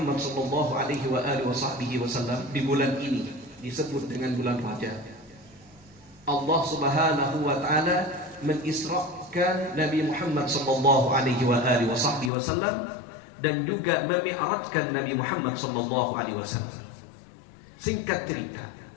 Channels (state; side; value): drops out; right; at 12.3 s